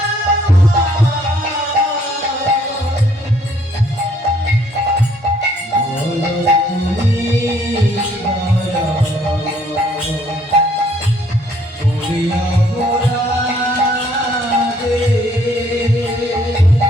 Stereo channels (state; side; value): normal; both; correlation 0.64